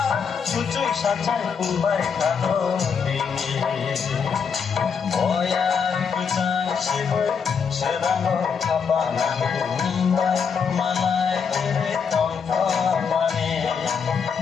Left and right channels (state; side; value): quieter; right; 6.3 dB